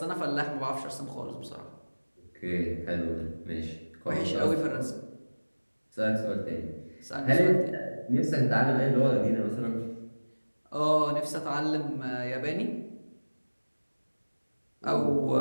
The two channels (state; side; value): inverted; both; correlation -1.00